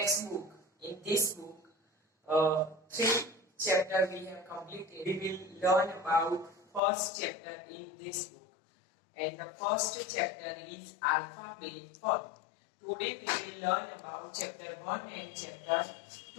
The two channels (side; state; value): right; drops out; at 6.8 s